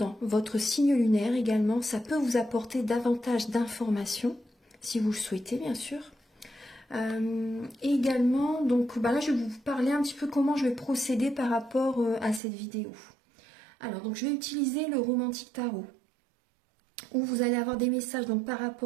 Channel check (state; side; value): drops out; left; at 12.4 s